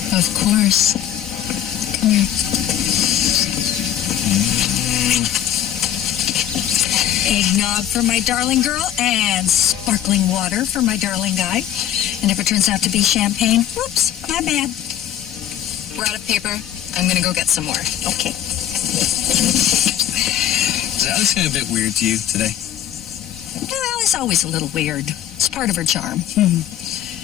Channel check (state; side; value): quieter; right; 10.9 dB